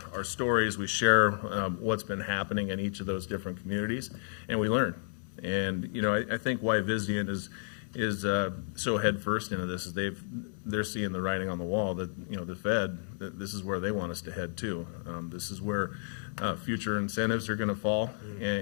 our stories. We share what's been happening in each of those different communities, and we learn. And I think why Vizient is so head first into this is they're seeing the writing on the wall that the Fed, that this is where they want us to head to. This is where future incentives are going to fall,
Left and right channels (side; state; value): right; silent; 57 dB below the other